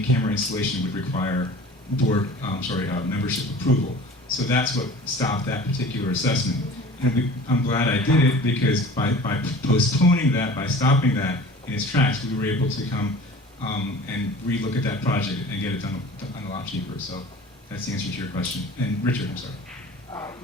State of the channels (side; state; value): both; normal; correlation 0.42